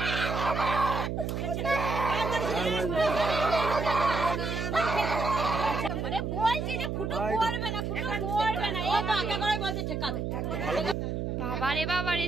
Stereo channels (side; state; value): right; noise; hum, 2 dB below the sound